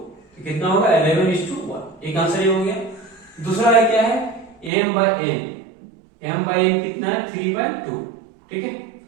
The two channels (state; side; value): drops out; left; at 4.7 s